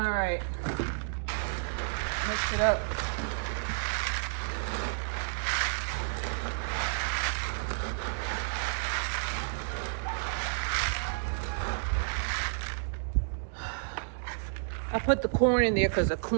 right, mix it up. I put the corn in there because the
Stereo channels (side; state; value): left; silent; digital silence